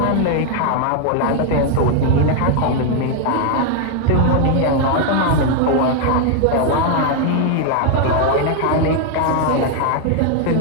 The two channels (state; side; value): different; both; correlation 0.00